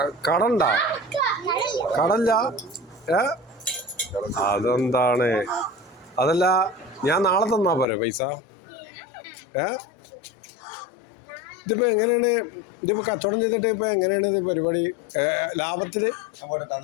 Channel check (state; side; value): drops out; right; at 7.9 s